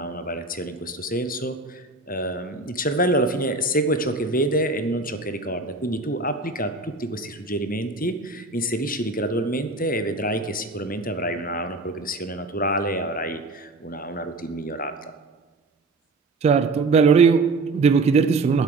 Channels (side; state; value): left; quieter; 3.3 dB